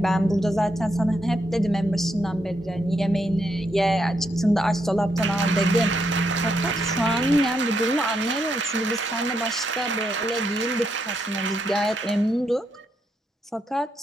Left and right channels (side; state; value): both; normal; correlation 0.79